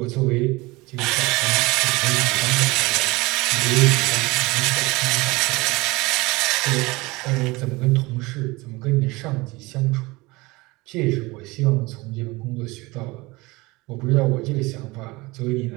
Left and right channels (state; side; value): quieter; left; 22.8 dB